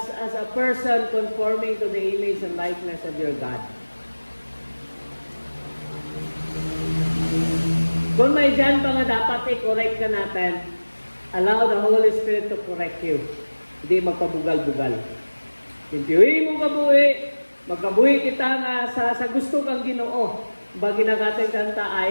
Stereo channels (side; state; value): both; inverted; correlation -1.00